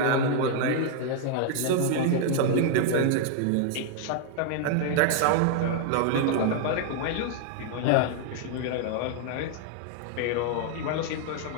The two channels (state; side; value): different; both; correlation 0.00